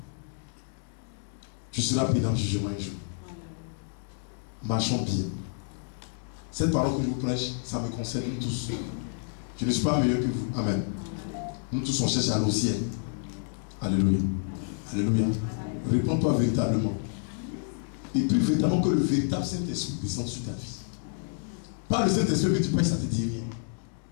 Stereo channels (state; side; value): silent; right; digital silence